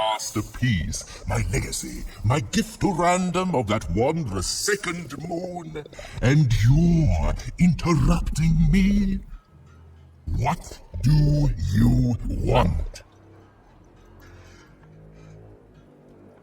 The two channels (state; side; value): identical; both; correlation 1.00